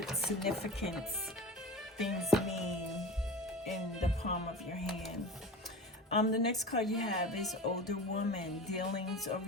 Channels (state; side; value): normal; both; correlation 0.32